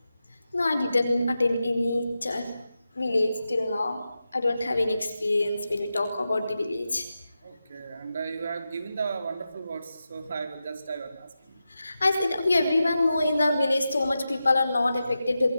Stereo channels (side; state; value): both; inverted; correlation -0.91